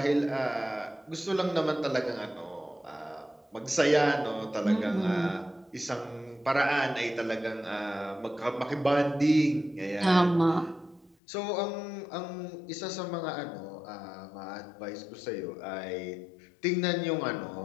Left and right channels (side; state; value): right; drops out; at 11.2 s